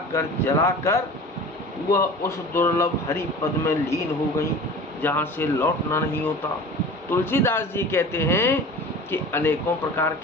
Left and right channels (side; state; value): both; normal; correlation 0.39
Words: कर जलाकर वह उस दुर्लभ हरि पद में लीन हो गई जहाँ से लौटना नहीं होता। तुलसीदास जी कहते हैं कि अनेकों प्रकार